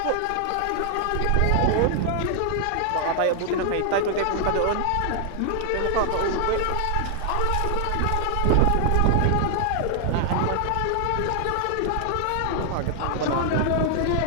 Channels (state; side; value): different; both; correlation 0.00